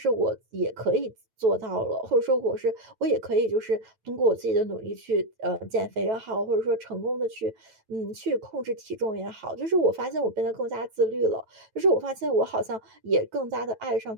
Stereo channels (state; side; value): late; left; 9.2 ms